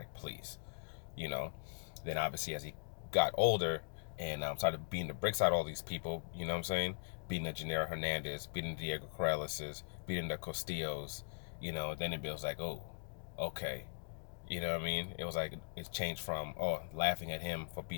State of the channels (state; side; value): silent; right; digital silence